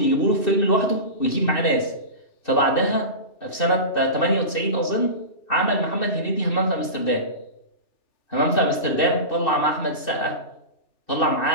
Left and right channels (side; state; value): right; late; 2.6 ms